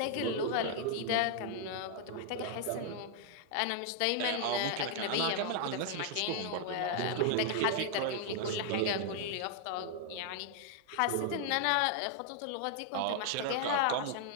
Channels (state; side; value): different; both; correlation -0.01